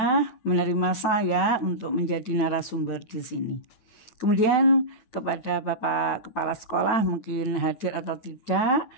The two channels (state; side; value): late; right; 9.1 ms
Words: menerima saya untuk menjadi narasumber di sini. Kemudian kepada Bapak Kepala Sekolah mungkin hadir atau tidak,